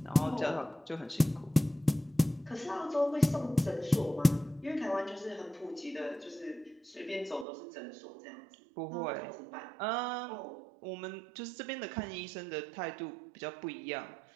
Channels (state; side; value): drops out; left; at 7.5 s